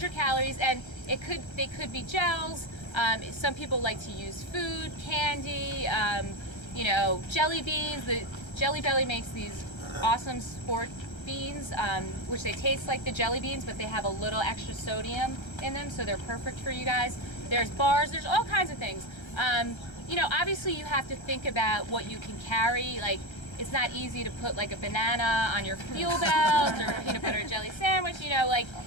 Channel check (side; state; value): right; late; 1.3 ms